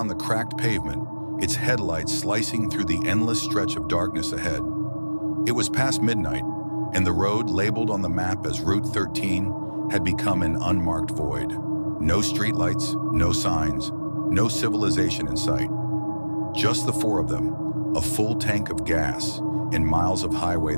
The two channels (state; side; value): inverted; both; correlation -1.00